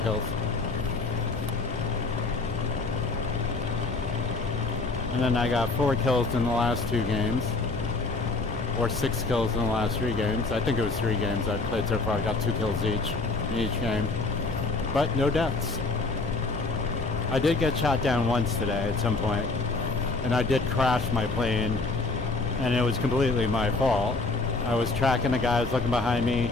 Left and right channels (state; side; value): quieter; right; 3.6 dB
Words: And then I got 4 kills in the last 2 games. Or 6 kills in the last 3 games. I think it was 3 games I've played so far. I got 2 kills each in each game. But no deaths. I did get shot down once today at some point, and I did crash my plane, and it was completely my fault. I was tracking the guy who was looking behind me,